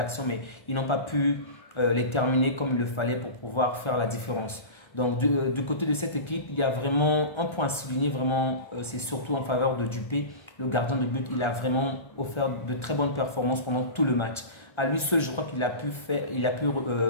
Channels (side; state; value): right; late; 1.3 ms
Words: mais ils n'ont pas pu les terminer comme il le fallait pour pouvoir faire la différence. Donc, du côté de cette équipe, il y a vraiment un point à souligner, vraiment, c'est surtout en faveur de Dupé, le gardien de but. Il a vraiment offert de très bonnes performances pendant tout le match. À lui seul, je crois qu'il a pu